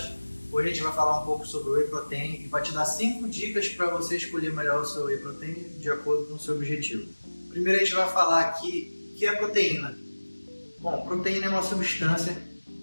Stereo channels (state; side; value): inverted; both; correlation -1.00